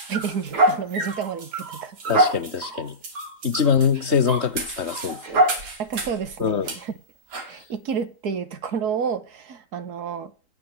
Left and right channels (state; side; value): late; left; 3.8 ms